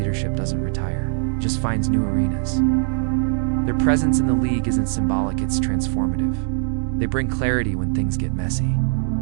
doesn't retire, it just finds new arenas. Their presence in the league isn't symbolic, it's transformative. They bring clarity when things get messy.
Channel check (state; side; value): silent; left; digital silence